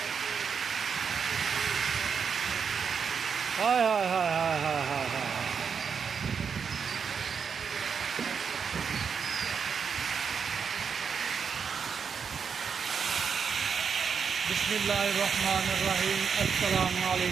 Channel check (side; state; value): left; quieter; 6.4 dB